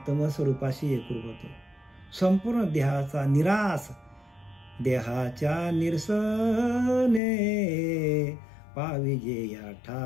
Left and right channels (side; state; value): right; drops out; at 7.2 s